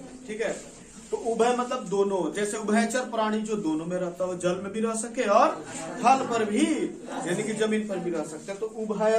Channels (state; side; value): identical; both; correlation 1.00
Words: ठीक है। तो उभय मतलब दोनों, जैसे उभयचर प्राणी जो दोनों में रहता है, जल में भी रह सके और थल पर भी यानी कि जमीन पर भी रह सकते हैं। तो